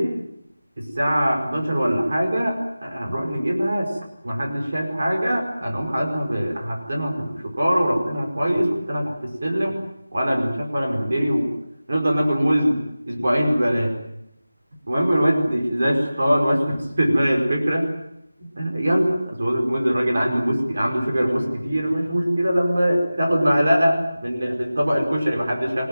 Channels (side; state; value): both; inverted; correlation -0.96